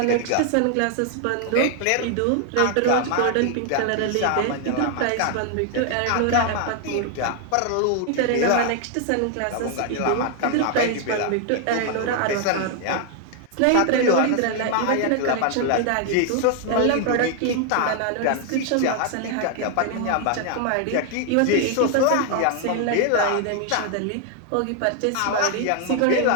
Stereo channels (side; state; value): both; different; correlation 0.00